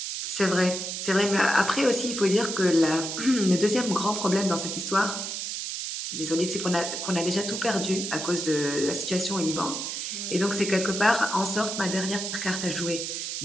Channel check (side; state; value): right; noise; hiss, 4 dB below the sound